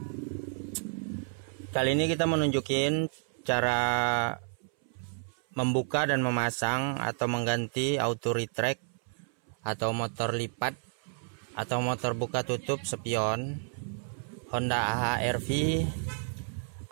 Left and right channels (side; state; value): left; silent; 57 dB below the other